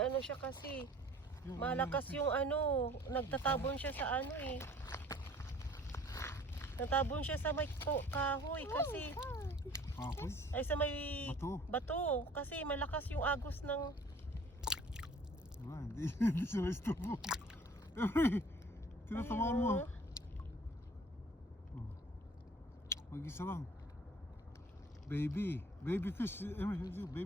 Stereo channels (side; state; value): both; normal; correlation 0.52